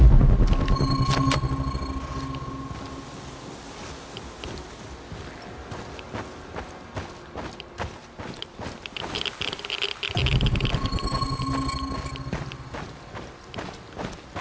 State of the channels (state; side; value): identical; both; correlation 1.00